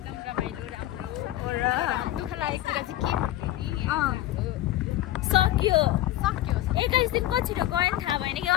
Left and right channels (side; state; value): right; quieter; 14.5 dB